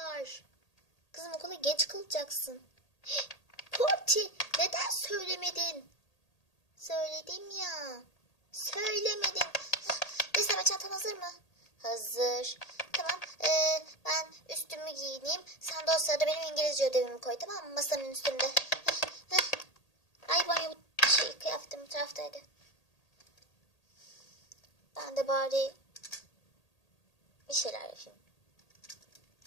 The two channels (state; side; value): late; right; 1.8 ms